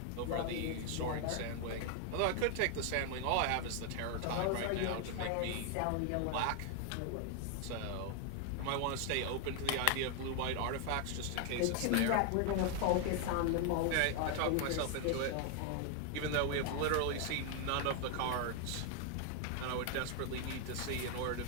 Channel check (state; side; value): different; both; correlation 0.01